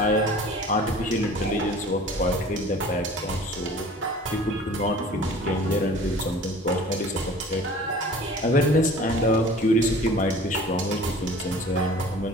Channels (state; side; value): normal; both; correlation 0.45